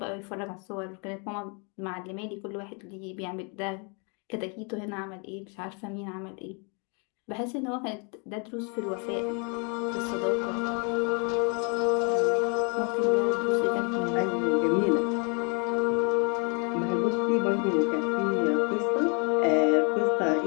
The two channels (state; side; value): quieter; right; 35.7 dB